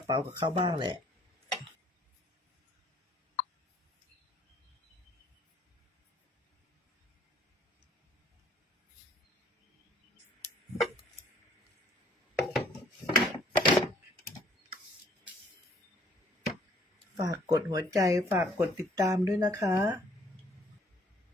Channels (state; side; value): normal; both; correlation 0.60